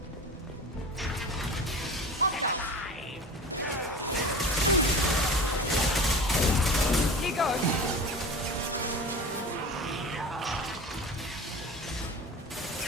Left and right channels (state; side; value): normal; both; correlation 0.34